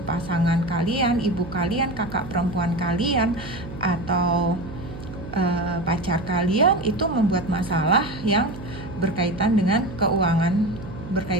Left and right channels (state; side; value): noise; right; hum, 12 dB below the sound